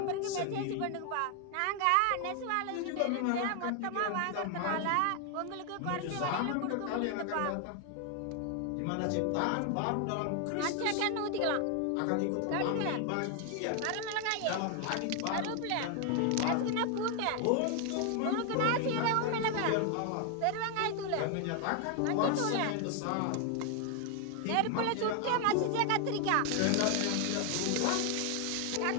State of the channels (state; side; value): different; both; correlation 0.00